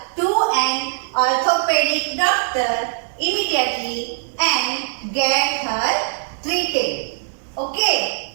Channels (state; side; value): silent; left; digital silence